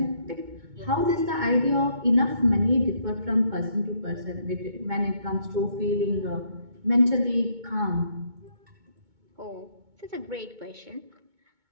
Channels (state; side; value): late; left; 2.2 ms